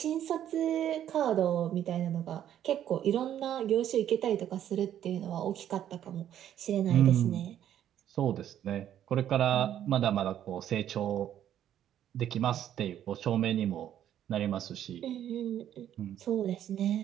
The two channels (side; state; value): left; quieter; 10.8 dB